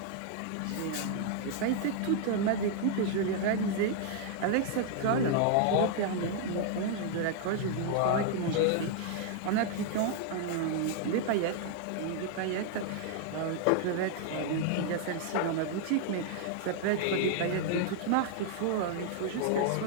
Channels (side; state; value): both; different; correlation 0.00